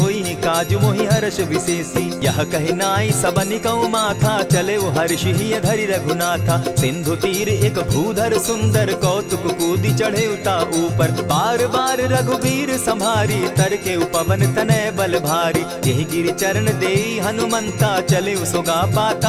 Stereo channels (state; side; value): identical; both; correlation 1.00